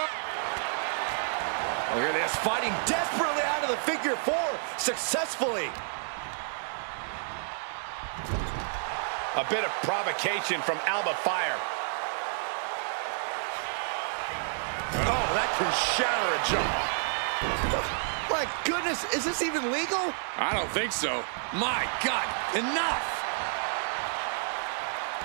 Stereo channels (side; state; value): left; silent; digital silence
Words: Look at this, fighting desperately out of the figure 4 successfully. A bit of provocation from Alba Fire. Oh, that can shatter a jaw. My goodness, is this even legal? I don't think so. My God, enough!